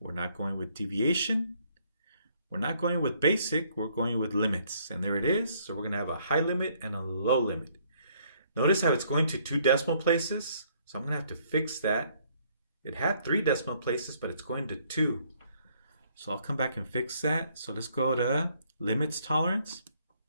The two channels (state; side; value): inverted; both; correlation -0.66